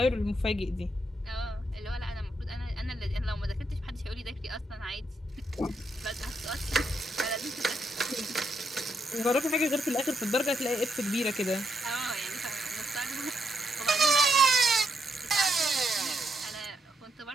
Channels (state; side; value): normal; both; correlation 0.79